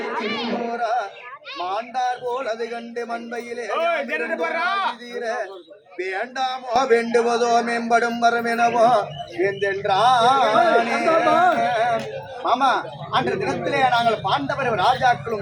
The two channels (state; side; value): identical; both; correlation 1.00